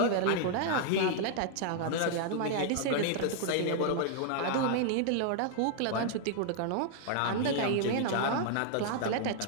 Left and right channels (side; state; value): both; different; correlation -0.01